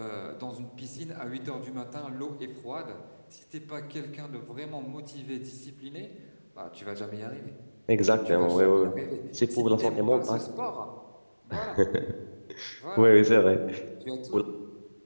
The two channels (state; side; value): inverted; both; correlation -1.00